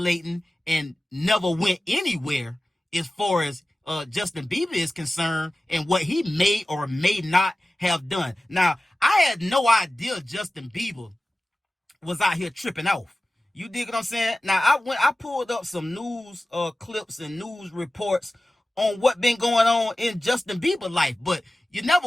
and never went anywhere as far as Justin Bieber is concerned, and what he may or may not have done. Now, I had no idea Justin Bieber was out here tripping off. You dig what I'm saying? Now, I pulled up some news clips and news reports on what been going on in Justin Bieber life, but you never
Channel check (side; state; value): both; normal; correlation 0.96